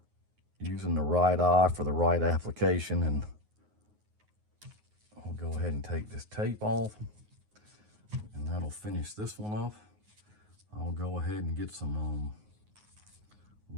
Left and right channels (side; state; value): left; late; 9.5 ms